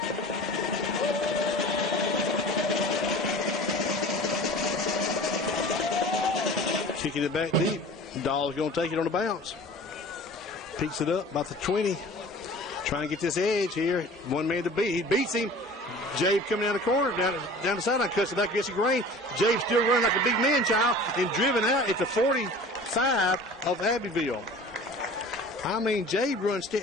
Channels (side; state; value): both; normal; correlation 0.42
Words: Kicking it back deep. Dahl's going to take it on the bounce. Picks it up about the 20. Trying to get this edge here. One man to beat. He beats him. Jabe coming down the corner, down the sideline, cuts it back against the grain. Jabe still running like a big man child and driven out at the 45 of Abbeville. I mean, Jabe runs,